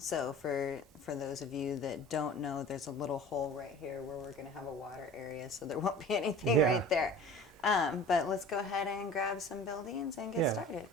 for those of you that don't know, there's a little hole right here where we're going to have a water area, so there won't be anything right there. But let's go ahead and grab some buildings and get started.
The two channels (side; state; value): both; normal; correlation 0.41